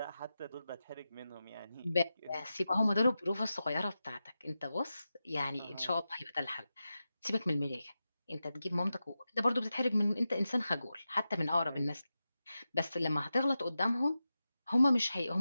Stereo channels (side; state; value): both; inverted; correlation -0.92